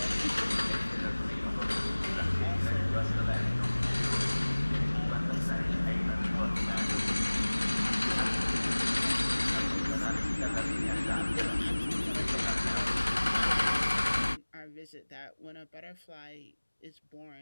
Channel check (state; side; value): inverted; both; correlation -1.00